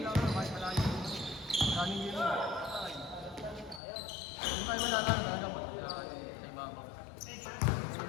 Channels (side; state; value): right; drops out; at 3.8 s